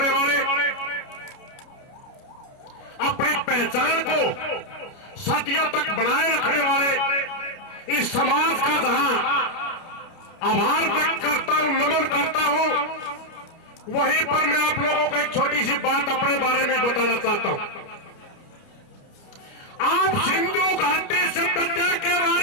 वाले, अपनी पहचान को सदियों तक बनाए रखने वाले इस समाज का जहां आभार व्यक्त करता हूं, नमन करता हूं, वहीं पर मैं आप लोगों को एक छोटी सी बात अपने बारे में बताना चाहता हूं। आप सिंधु घाटी सभ्यता के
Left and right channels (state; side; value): late; right; 29 ms